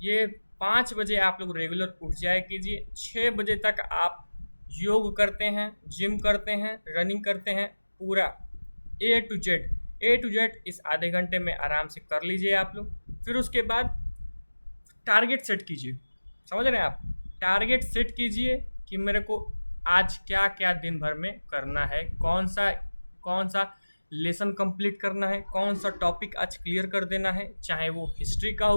5 बजे आप लोग रेगुलर उठ जाया कीजिए। 6 बजे तक आप योग करते हैं, जिम करते हैं, रनिंग करते हैं, पूरा ए टू जेड इस आधे घंटे में आराम से कर लीजिए आप लोग। फिर उसके बाद टारगेट सेट कीजिए। समझ रहे हैं आप? टारगेट सेट कीजिए कि मेरे को आज क्या क्या दिन भर में करना है, कौन सा लेसन कंप्लीट करना है, कौन सा टॉपिक आज क्लियर कर देना है, चाहे वो हिस्ट्री का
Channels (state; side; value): inverted; both; correlation -1.00